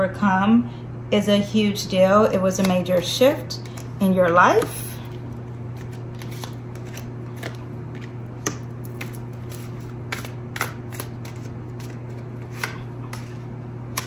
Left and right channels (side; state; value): both; identical; correlation 1.00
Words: is a huge deal. It was a major shift in your life.